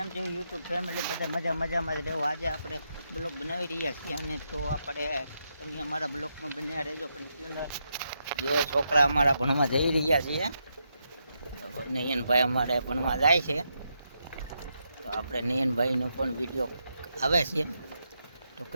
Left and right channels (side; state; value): both; inverted; correlation -0.82